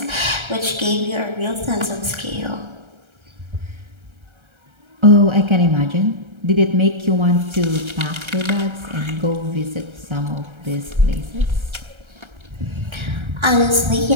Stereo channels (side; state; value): left; late; 1.3 ms